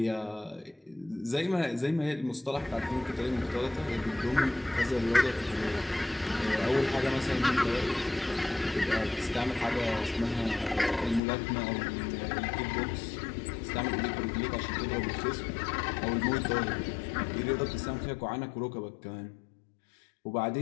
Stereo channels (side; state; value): right; drops out; at 11.2 s